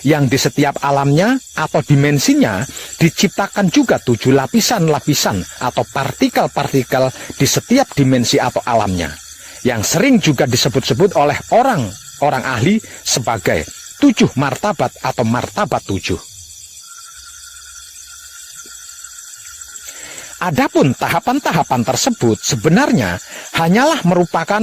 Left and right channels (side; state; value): both; identical; correlation 1.00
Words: yang di setiap alamnya atau dimensinya diciptakan juga 7 lapisan-lapisan atau partikel-partikel di setiap dimensi atau alamnya, yang sering juga disebut-sebut oleh orang ahli sebagai 7 martabat atau martabat 7. Adapun tahapan-tahapan tersebut sebenarnya hanyalah merupakan